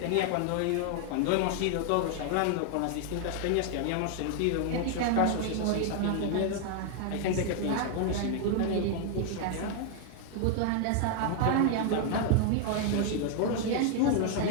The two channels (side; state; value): both; different; correlation 0.00